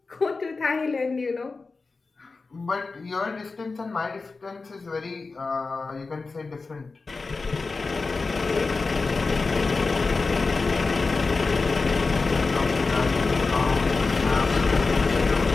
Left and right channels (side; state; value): right; quieter; 4.0 dB